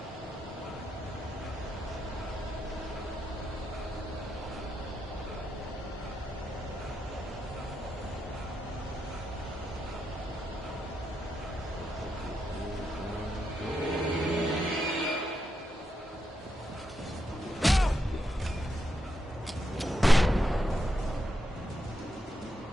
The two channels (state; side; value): normal; both; correlation 0.83